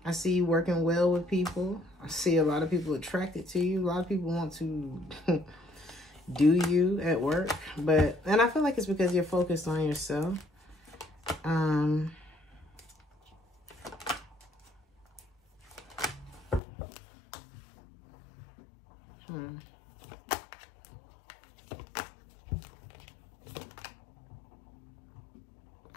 I see you working well with people. I see a lot of people attracted to you. A lot of people want to do you at work. And I feel like it's because you're focused on yourself. I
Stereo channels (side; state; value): right; drops out; at 16.6 s